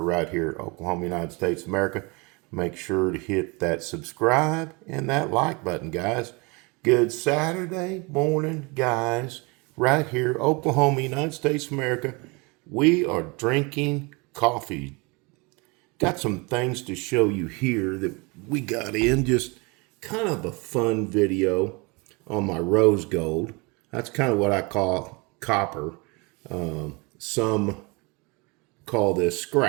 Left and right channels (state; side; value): quieter; left; 28.2 dB